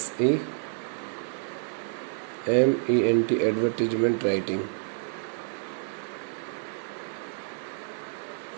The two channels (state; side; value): silent; left; 58 dB below the other